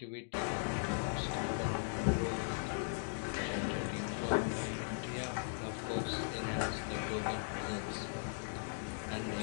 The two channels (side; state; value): right; silent; digital silence